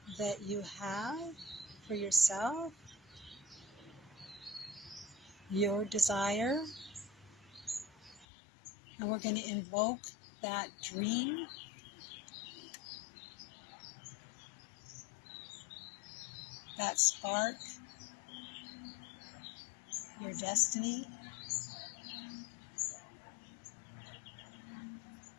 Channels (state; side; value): drops out; right; at 8.2 s